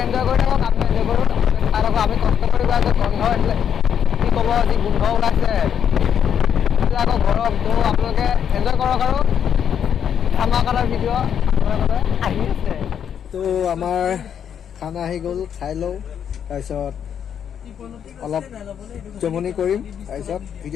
এনজয় কৰি থাকক আমি এনজয় কৰোঁ চাই থাকক আমি কষ্ট কৰি গৈ আছোঁ গন্ধ আছিলে কি ক'ব যি গোন্ধ ওলাইছে আকৌ গৰম তো আপোনালোকে এনজয় কৰক আৰু ধামাকাৰ ভিডিঅ' আপোনালোকে আহি আছে তো আমাৰ খানা আহি গ'ল খাই লওঁ তাৰপিছত অলপ জমনি কৰিম তাৰপিছত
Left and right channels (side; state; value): right; quieter; 8.5 dB